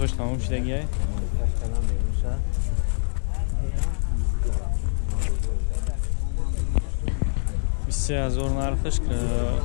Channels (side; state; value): right; silent; digital silence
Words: تمام شدگیه 23,000 نرخش که